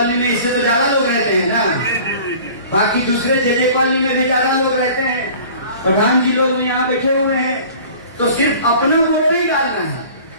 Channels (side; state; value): both; inverted; correlation -0.45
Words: में इससे तो ज्यादा लोग रहते हैं ना, बाकी दूसरे जे कॉलोनी में भी ज्यादा लोग रहते हैं, प्रधान जी लोग भी यहाँ बैठे हुए हैं। तो सिर्फ अपना वोट नहीं डालना है,